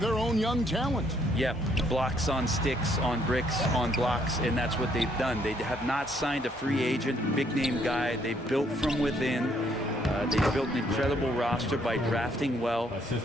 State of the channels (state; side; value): normal; both; correlation 0.68